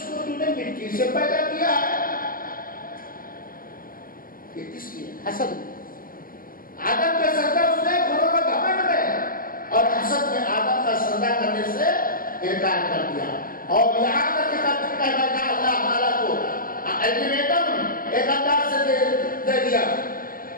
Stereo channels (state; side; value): late; right; 0.41 ms